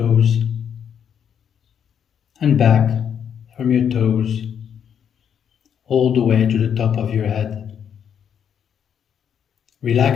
and back from your toes all the way to the top of your head.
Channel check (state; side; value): quieter; right; 8.3 dB